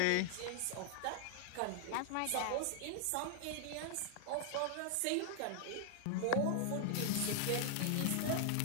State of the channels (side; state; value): both; different; correlation 0.00